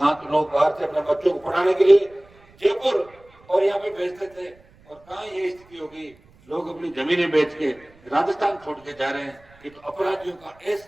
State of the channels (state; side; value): noise; right; rumble, 28 dB below the sound